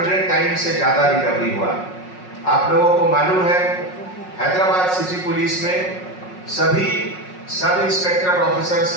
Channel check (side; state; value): right; late; 5.5 ms